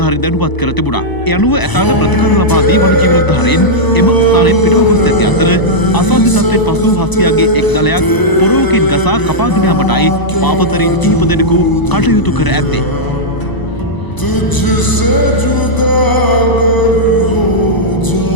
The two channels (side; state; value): right; late; 1.0 ms